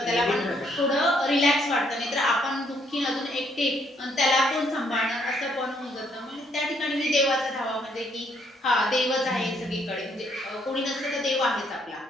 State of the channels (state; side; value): normal; both; correlation 0.70